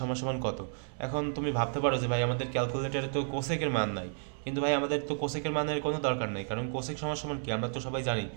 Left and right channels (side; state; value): left; silent; 56 dB below the other